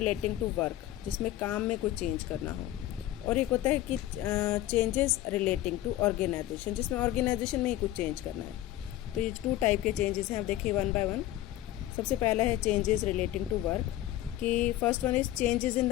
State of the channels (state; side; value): quieter; right; 14.5 dB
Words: टू वर्क, जिसमें काम में कुछ चेंज करना हो, और एक होता है कि चेंजेस रिलेटिंग टू ऑर्गेनाइजेशन, जिसमें ऑर्गेनाइजेशन में ही कुछ चेंज करना है। तो ये टू टाइप के चेंजेस हैं। आप देखिए वन बाय वन। सबसे पहला है चेंजेस रिलेटिंग टू वर्क, कि first one is changes in